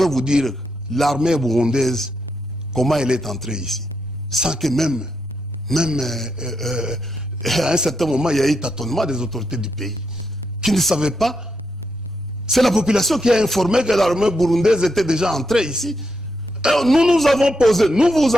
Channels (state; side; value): normal; both; correlation 0.82